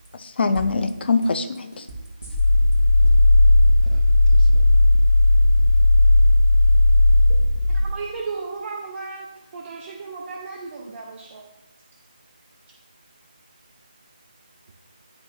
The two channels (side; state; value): both; inverted; correlation -0.96